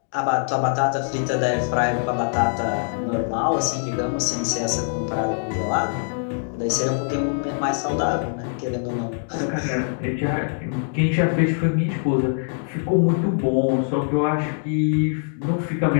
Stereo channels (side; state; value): right; silent; digital silence